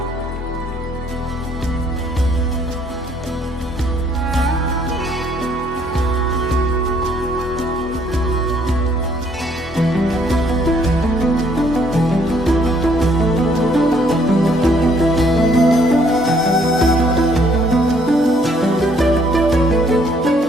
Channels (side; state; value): both; normal; correlation 0.65